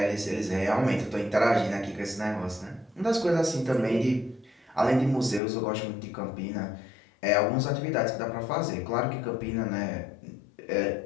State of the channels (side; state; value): right; drops out; at 5.4 s